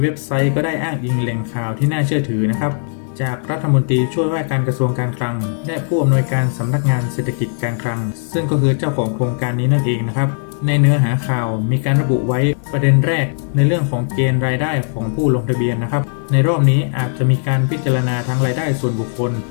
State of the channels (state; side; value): silent; right; digital silence